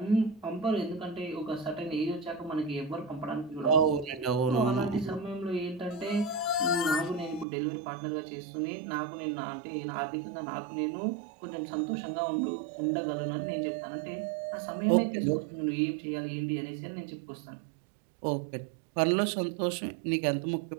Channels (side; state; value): left; drops out; at 7.5 s